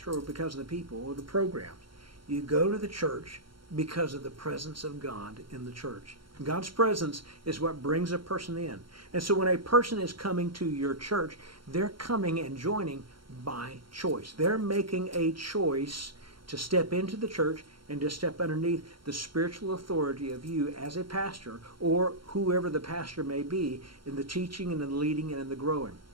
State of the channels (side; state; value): left; late; 0.73 ms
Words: or because of the people or the programs, you go to the church because of the presence of God in the church. God's presence is what brings a person in. And so when a person is coming to your church, they're coming and joining by choice. They're making a choice to step into the church and to step underneath the spiritual authority of you as a pastor or whoever the pastor may be in the teaching and in the leading and in the growing.